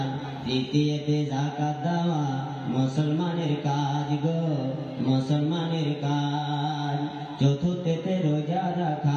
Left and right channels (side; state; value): both; identical; correlation 1.00